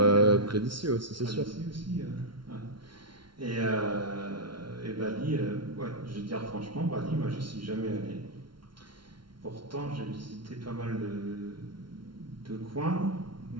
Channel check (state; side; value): late; left; 0.73 ms